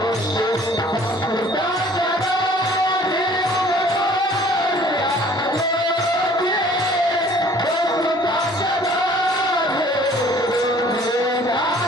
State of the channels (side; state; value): both; normal; correlation 0.54